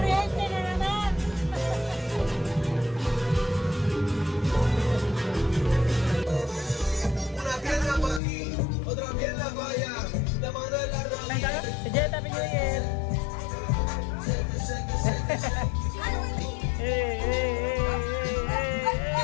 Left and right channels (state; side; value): drops out; right; at 8.2 s